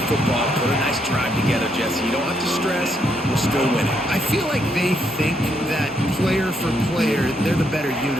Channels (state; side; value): normal; both; correlation 0.76